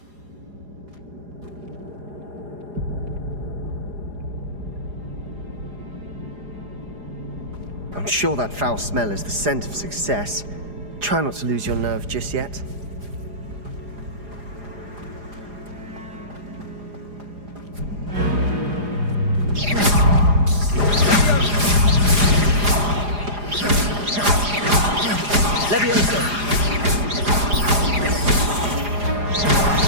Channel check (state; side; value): late; left; 4.9 ms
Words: I'm sure that foul smell is the scent of success. Try not to lose your nerve just yet.